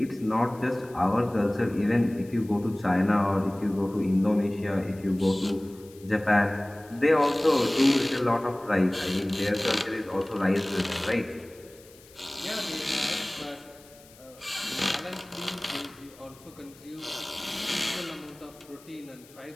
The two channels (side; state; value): left; noise; hiss, 24 dB below the sound